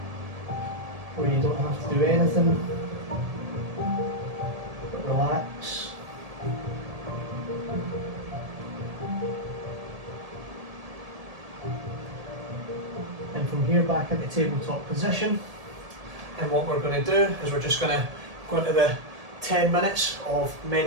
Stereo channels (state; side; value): late; left; 1.7 ms